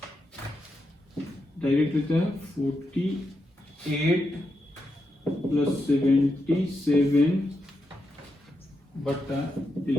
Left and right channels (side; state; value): both; normal; correlation 0.85